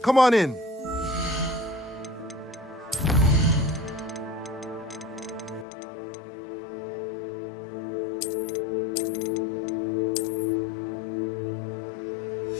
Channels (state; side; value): drops out; right; at 5.7 s